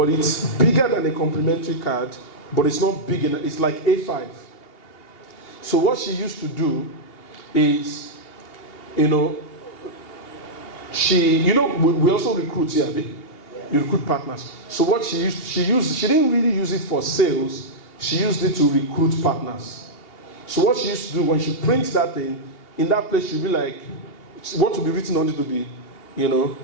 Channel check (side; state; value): right; late; 2.8 ms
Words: it's bigger than a complimentary card, but it's not big enough. It's like A5. So what she used to do is, we also recruit here. You recruit partners. So what she didn't really use it for sales. She used it to recruit partners. So what she used to do when she prints that thing, in that place she'll be like, what will be written on it to be,